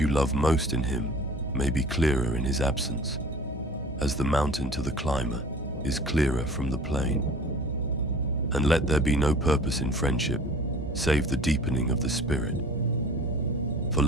love most in him may be clearer in his absence, as the mountain to the climber is clearer from the plain. And let there be no purpose in friendship, save the deepening of the spirit. For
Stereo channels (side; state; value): both; normal; correlation 0.45